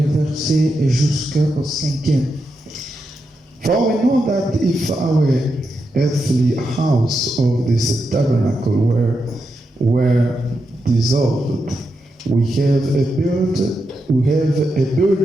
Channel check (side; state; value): both; normal; correlation 0.86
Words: jusqu'au 5e. For we know that if our earthly house of this tabernacle were dissolved, we have a